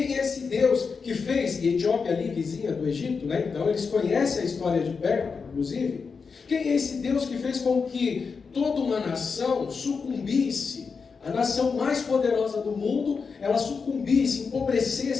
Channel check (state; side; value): quieter; right; 5.2 dB